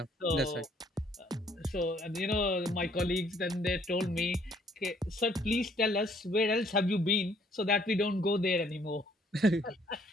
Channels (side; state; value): both; normal; correlation 0.64